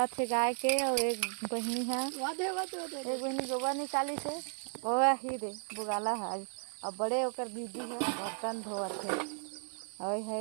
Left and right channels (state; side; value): silent; left; 55 dB below the other